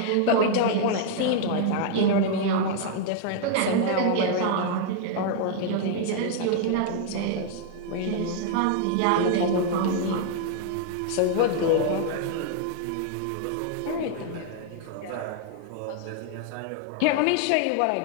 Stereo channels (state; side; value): different; both; correlation -0.01